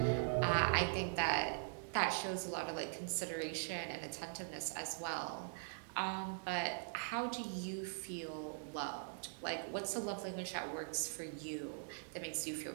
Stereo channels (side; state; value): left; silent; digital silence